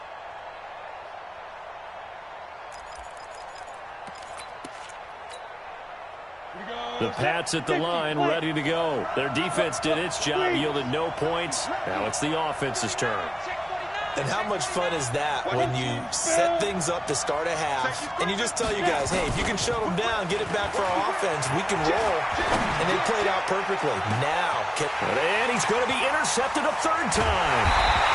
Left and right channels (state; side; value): identical; both; correlation 1.00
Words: The Pats at the line, ready to go. Their defense did its job, yielded no points. Now it's the offense's turn. And how much fun is that when you set things up to start a half and you just tell you guys, hey, if you can shut them down, get it back for our offense, we can roll. And they played out perfectly. Now, and he's going to be intercepted a 3rd time.